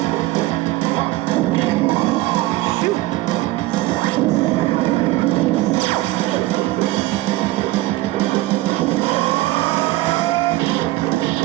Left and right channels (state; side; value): quieter; left; 17.9 dB